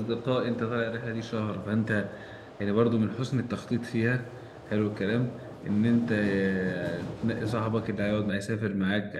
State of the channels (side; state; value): both; identical; correlation 1.00